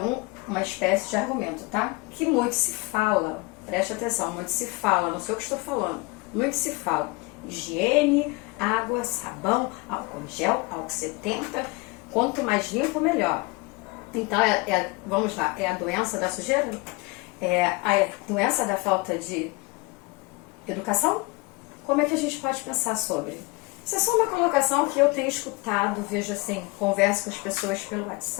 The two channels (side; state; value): right; quieter; 25.5 dB